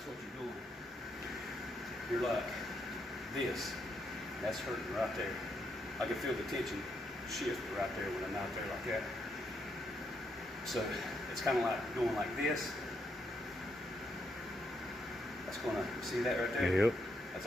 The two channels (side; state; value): both; normal; correlation 0.78